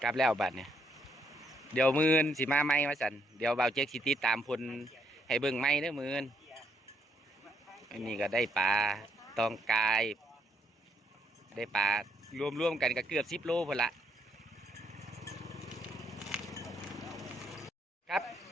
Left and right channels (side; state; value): both; normal; correlation 0.73